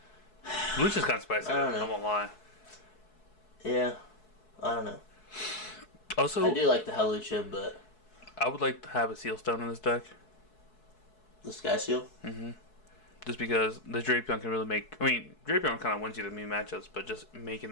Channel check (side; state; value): right; late; 4.7 ms